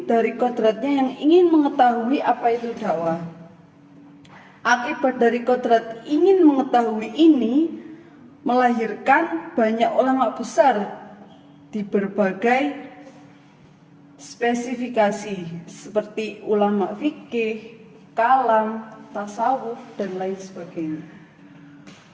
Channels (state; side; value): identical; both; correlation 1.00